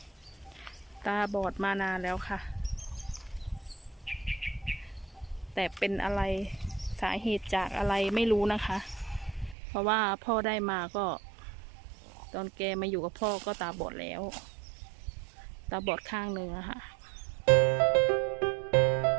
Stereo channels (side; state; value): left; drops out; at 9.6 s